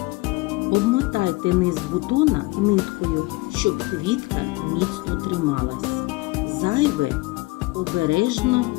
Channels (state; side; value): quieter; right; 22.8 dB